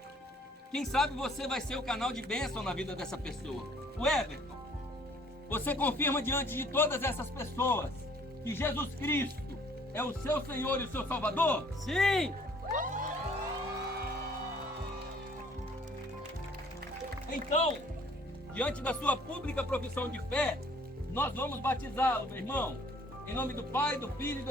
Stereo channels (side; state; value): both; normal; correlation 0.58